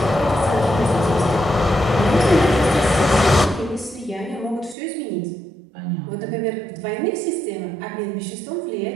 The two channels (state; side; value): drops out; left; at 4.8 s